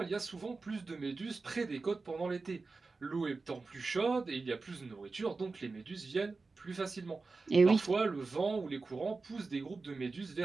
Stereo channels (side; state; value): left; quieter; 4.0 dB